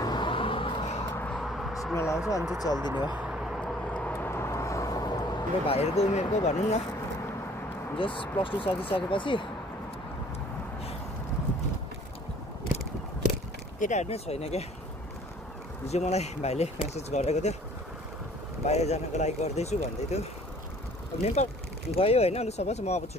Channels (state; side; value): normal; both; correlation 0.54